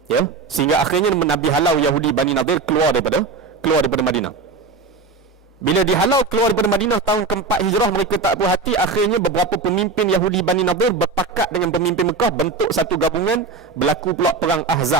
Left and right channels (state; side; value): quieter; left; 4.1 dB